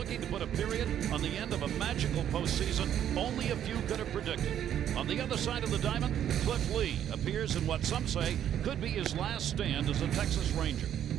to put a period on the end of a magical postseason only a few could have predicted. On the other side of the diamond, Cliff Lee appears in what some say could be his last stand as a Texas Ranger.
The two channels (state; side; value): quieter; left; 10.2 dB